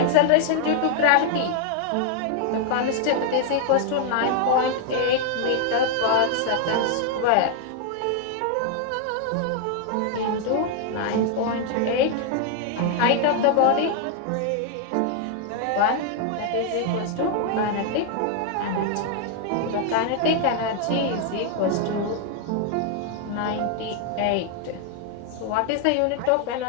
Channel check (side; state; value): both; different; correlation 0.00